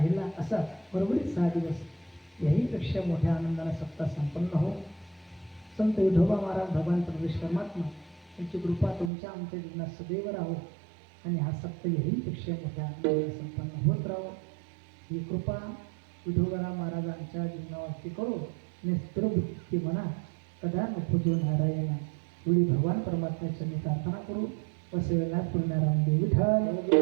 असा बरोबरीत 6 दिवस याहीपेक्षा मोठ्या आनंदानं सप्ताह संपन्न हो संत विठोबा महाराज भगवान परमेश्वर परमात्मा यांची कृपा तुमच्या आमच्या जीवनात सदैव राहो आणि हा सप्ताह याहीपेक्षा मोठ्या आनंदानं संपन्न होत राहो ही कृपा विठोबा महाराजांच्या जीवनावरती करो आणि स्थिरबुद्धी म्हणा कदा नको जो नारायणा एवढी भगवान परमात्म्याची मी प्रार्थना करू वसवेला पूर्णाराम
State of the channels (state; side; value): drops out; left; at 9.1 s